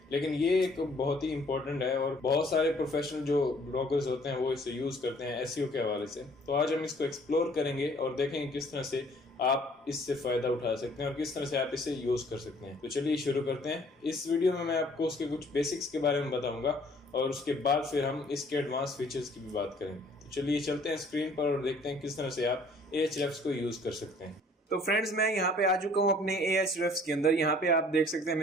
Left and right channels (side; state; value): both; normal; correlation 0.57